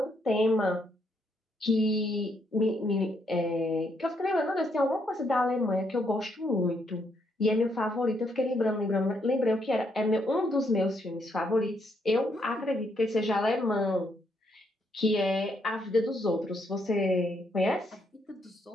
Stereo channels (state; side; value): normal; both; correlation 0.75